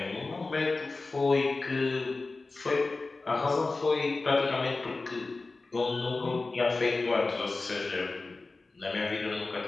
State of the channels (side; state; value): right; quieter; 3.6 dB